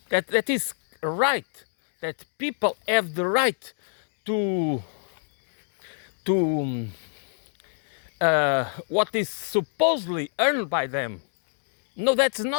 that is right, that people have the right to what is supposedly earned by them. No, that's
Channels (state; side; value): silent; right; digital silence